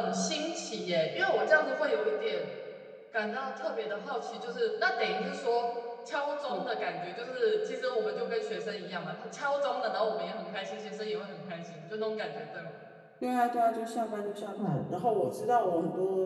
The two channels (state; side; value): identical; both; correlation 1.00